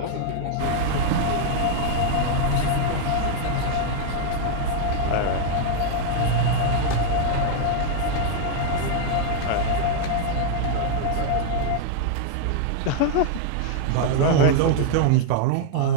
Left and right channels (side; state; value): both; different; correlation 0.00